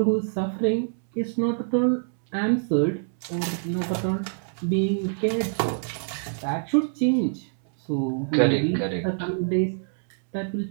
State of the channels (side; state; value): left; silent; 61 dB below the other